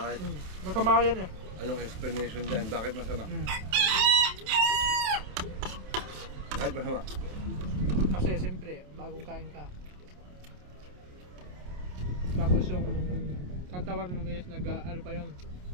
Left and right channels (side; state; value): left; late; 28 ms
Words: Masama yan eh. Anong explanation dyan? Bakit masama? Bakit masama? Kasi siyempre, bagong kain ka. Tapos yung katawan mo guys, ano pa yun?